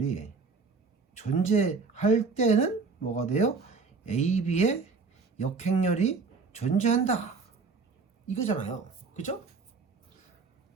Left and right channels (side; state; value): left; quieter; 4.6 dB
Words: 존재할 때는 뭐가 돼요? A, B의 역행렬이 존재한다. 이거잖아요. 그죠?